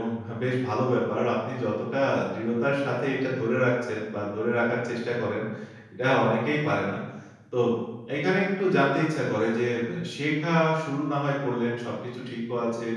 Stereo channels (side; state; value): both; identical; correlation 1.00